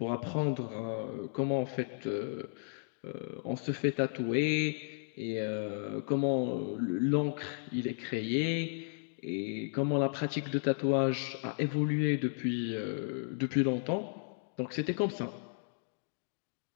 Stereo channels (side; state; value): right; silent; digital silence